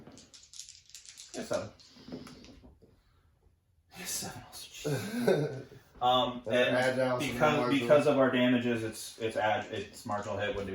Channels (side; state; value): both; identical; correlation 1.00